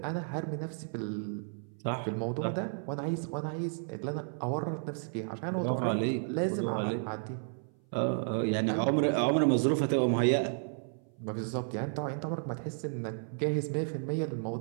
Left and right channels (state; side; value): silent; left; 56 dB below the other